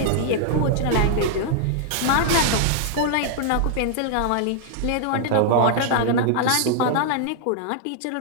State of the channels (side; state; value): both; different; correlation -0.01